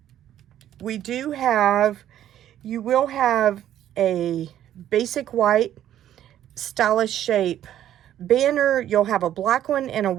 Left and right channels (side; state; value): left; quieter; 11.5 dB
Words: we do have, you will have a basic white stylish shape banner. You'll have a black one and a